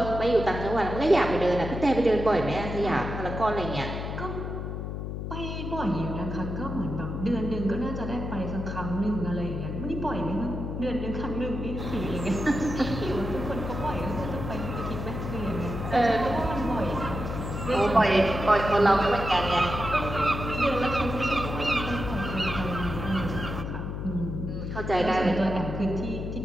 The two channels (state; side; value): noise; left; hum, 5 dB below the sound